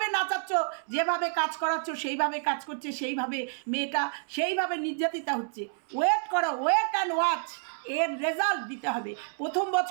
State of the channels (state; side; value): silent; left; 58 dB below the other